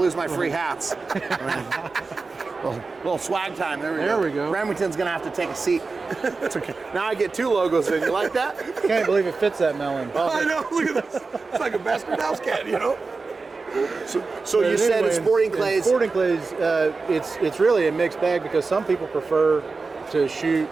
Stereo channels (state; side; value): quieter; left; 4.1 dB